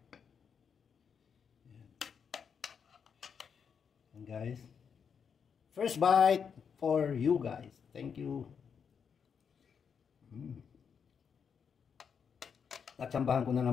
Ayan. And guys, first bite for you guys. Thank you. Natsambahan ko na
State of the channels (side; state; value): right; quieter; 6.8 dB